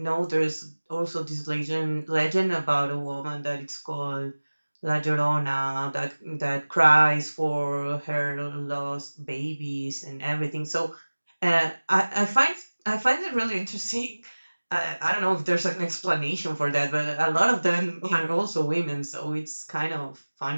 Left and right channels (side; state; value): both; inverted; correlation -1.00